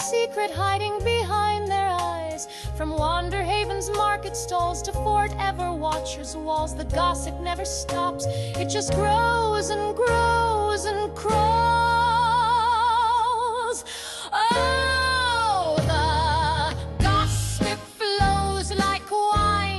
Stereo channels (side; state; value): both; identical; correlation 1.00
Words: hiding behind their eyes. skies. From Wanderhaven's market stalls to Fort Everwatcher's walls, the gossip never stops. It just grows and grows and crawls. Oh, the gossip flows like